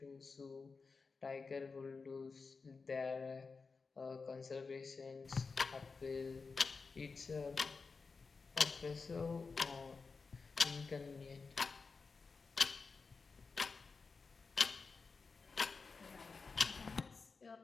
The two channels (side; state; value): right; quieter; 4.6 dB